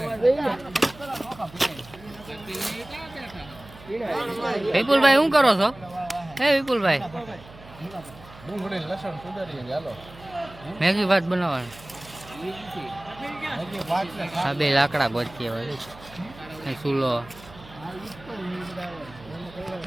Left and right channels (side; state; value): right; noise; hum, 20 dB below the sound